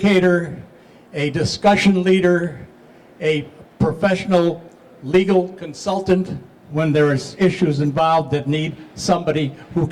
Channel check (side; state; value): both; identical; correlation 1.00